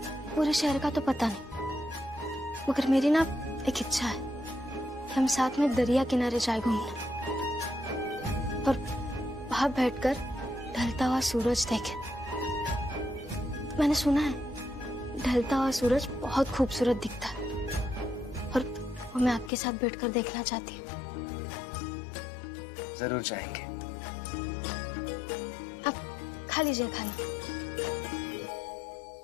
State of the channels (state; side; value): drops out; right; at 19.5 s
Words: पूरे शहर का तो पता नहीं, मगर मेरी ना एक इच्छा है कि हम साथ में दरिया किनारे जाए घूमने, और वहां बैठकर ढलता हुआ सूरज देखें। मैंने सुना है ढलता हुआ सूरज बहुत खूबसूरत दिखता है, और वो मैं आपके साथ बैठकर देखना चाहती हूँ। जरूर जाएंगे। आप खा लीजिए खाना।